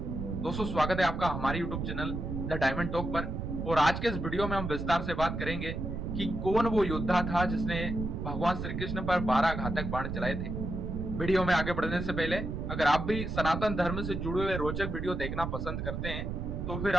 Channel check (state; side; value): noise; right; rumble, 4 dB below the sound